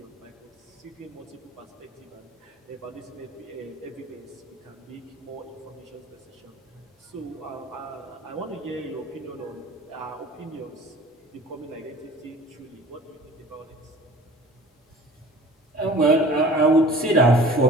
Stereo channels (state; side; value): normal; both; correlation 0.46